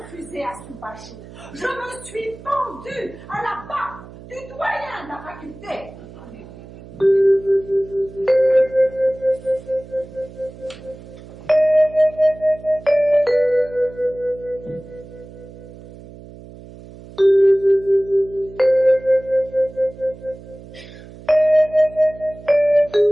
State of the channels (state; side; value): noise; right; hum, 18 dB below the sound